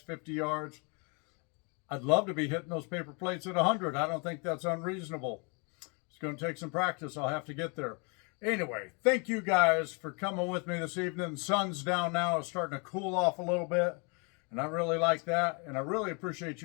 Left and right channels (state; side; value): quieter; right; 33.6 dB